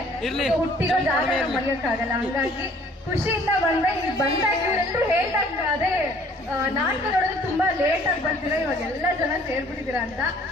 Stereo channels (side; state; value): both; normal; correlation 0.56